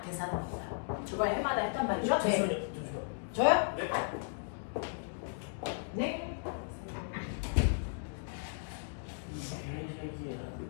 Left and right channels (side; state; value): right; silent; digital silence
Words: 계산한 겁니다. 저걸 해마다 했단 말이죠? 네. 저요? 네?